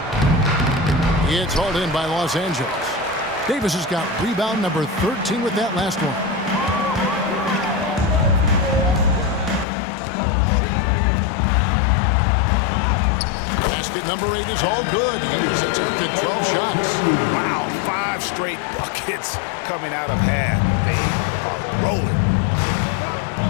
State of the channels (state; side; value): drops out; right; at 9.7 s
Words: It's hauled in by Los Angeles. Davis has got rebound number 13 with that last one. Basket number 8 is all good. He's attempted 12 shots. Wow, 5 straight buckets coming out of half. They are rolling.